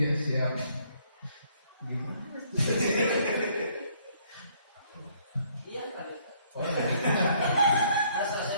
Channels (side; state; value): both; inverted; correlation -0.65